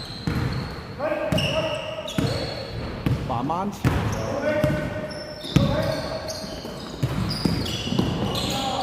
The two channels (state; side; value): identical; both; correlation 1.00